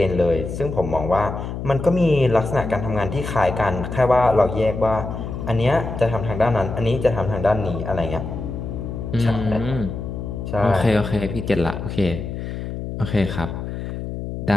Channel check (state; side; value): noise; left; hum, 6 dB below the sound